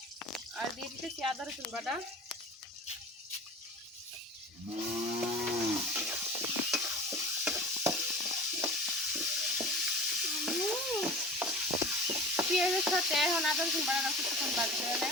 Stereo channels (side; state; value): both; normal; correlation 0.37